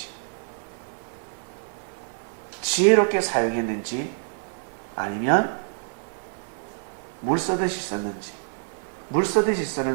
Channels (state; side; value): silent; left; 60 dB below the other